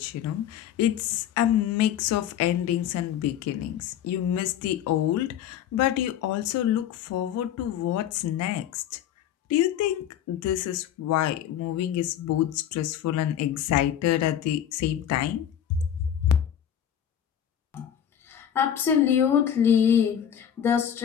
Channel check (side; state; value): right; quieter; 9.8 dB